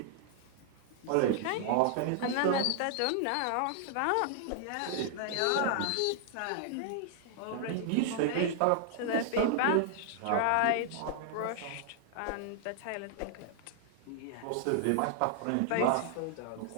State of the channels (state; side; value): different; both; correlation 0.00